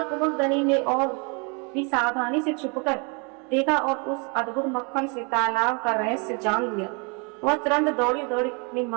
कुमुदनी ने और भी सावधानी से छुपकर देखा और उस अद्भुत मक्खन से तालाब का रहस्य जान लिया। वह तुरंत दौड़ी दौड़ी अपनी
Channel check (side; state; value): left; quieter; 33.9 dB